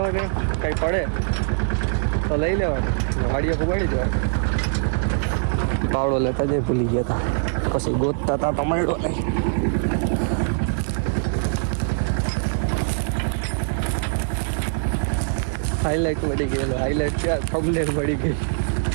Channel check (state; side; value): silent; left; digital silence